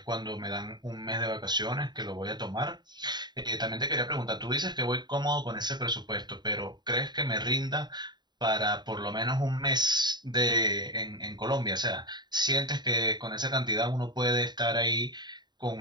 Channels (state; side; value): late; left; 0.21 ms